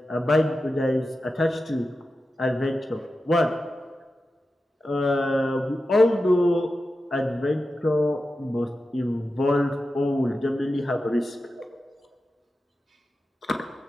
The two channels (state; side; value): normal; both; correlation 0.92